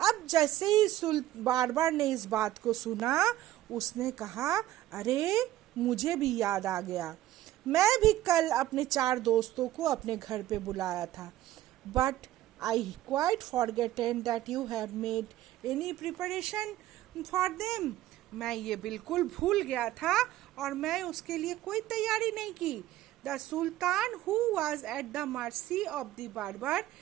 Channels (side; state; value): left; quieter; 14.4 dB